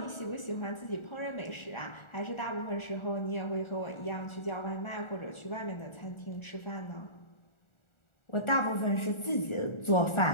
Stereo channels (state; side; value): late; right; 1.4 ms